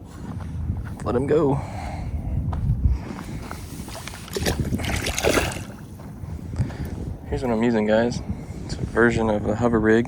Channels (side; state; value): both; identical; correlation 1.00